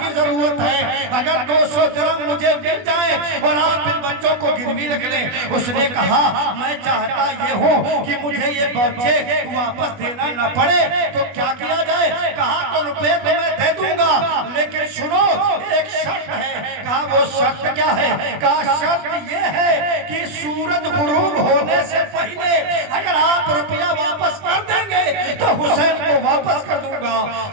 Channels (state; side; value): late; left; 20 ms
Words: کی ضرورت ہے، اگر 200 درہم مجھے مل جائے اور آپ ان بچوں کو گروی رکھ لیں۔ اس نے کہا میں چاہتا یہ ہوں کہ مجھے یہ بچے واپس دینا نہ پڑے، تو کیا کیا جائے؟ کہا تو روپے تو میں دے دوں گا، لیکن سنو ایک شرط ہے۔ کہا وہ شرط کیا ہے؟ کہا شرط یہ ہے کہ سورج غروب ہونے سے پہلے اگر آپ روپیہ واپس کر دیں گے تو حسین کو واپس کر دوں گا،